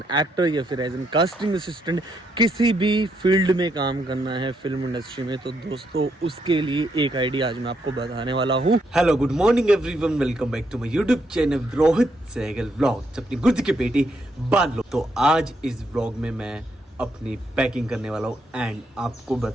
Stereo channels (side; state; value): both; normal; correlation 0.77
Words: एक्टर, या फिर एज एन कास्टिंग असिस्टेंट, किसी भी फील्ड में काम करना है फिल्म इंडस्ट्री में, तो दोस्तों उसके लिए एक आइडिया आज मैं आपको बताने वाला हूँ। Hello, good morning everyone, welcome back to my YouTube channel Rohit Sehgal vlogs. अपनी गुर्द की पेटी बांध लो। तो आज इस व्लॉग में मैं अपनी पैकिंग करने वाला हूँ एंड आपको